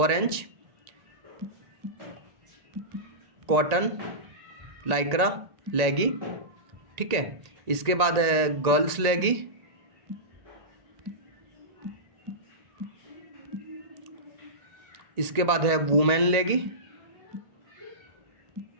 कॉटन लाइक्रा लेगी, ठीक है। इसके बाद है गर्ल्स लेगी, इसके बाद है वुमेन लेगी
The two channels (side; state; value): left; late; 1.8 ms